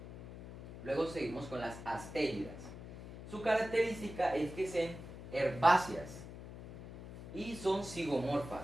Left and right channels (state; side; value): noise; left; hum, 12 dB below the sound